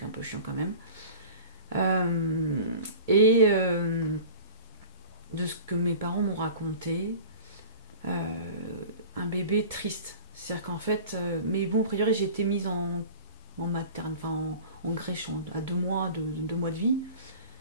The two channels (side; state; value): both; inverted; correlation -0.40